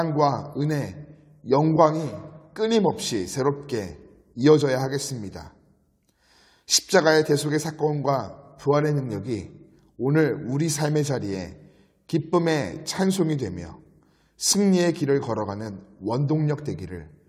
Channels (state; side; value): identical; both; correlation 1.00